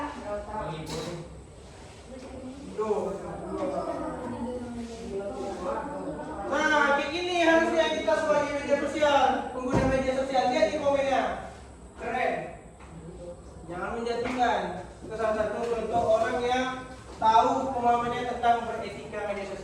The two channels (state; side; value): identical; both; correlation 1.00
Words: Mengikuti tuh. Nah kayak gini harusnya kita sebagai media sosial, pengguna media sosial, lihat di komennya, keren. Jangan menjatuhkan. Itu salah satu contoh orang yang tahu pemahamannya tentang beretika media